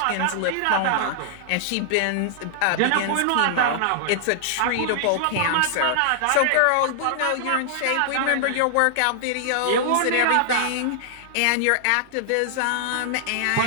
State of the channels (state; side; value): different; both; correlation -0.01